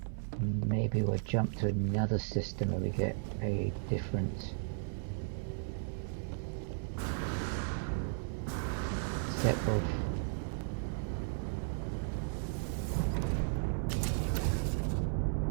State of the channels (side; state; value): left; silent; 54 dB below the other